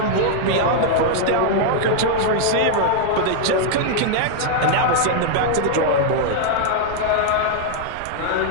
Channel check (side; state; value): both; different; correlation -0.01